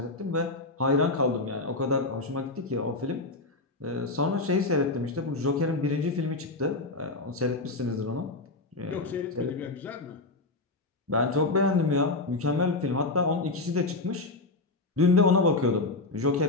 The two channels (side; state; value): right; quieter; 3.2 dB